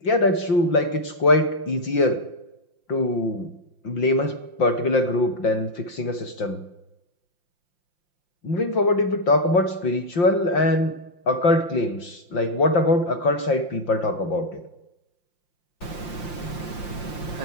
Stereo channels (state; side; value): late; right; 5.7 ms